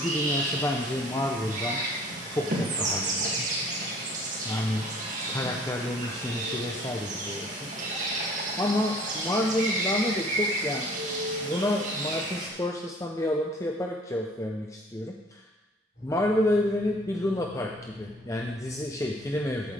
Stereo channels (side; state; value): both; normal; correlation 0.53